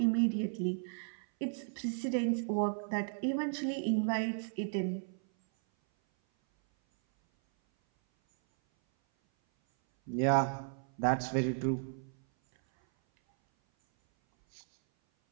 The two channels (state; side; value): silent; left; 55 dB below the other